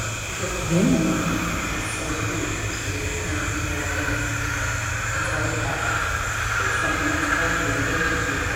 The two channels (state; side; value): identical; both; correlation 1.00